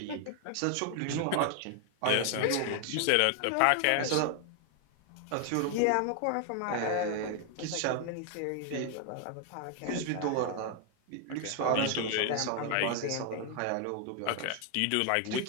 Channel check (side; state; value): both; different; correlation 0.00